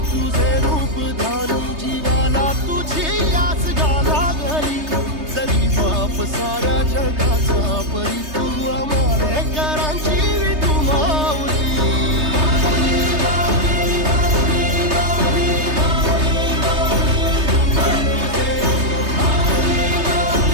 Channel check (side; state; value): left; late; 3.3 ms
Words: तुझे रूप जीवाला तुझी आस गाला गली जरी बाप सारा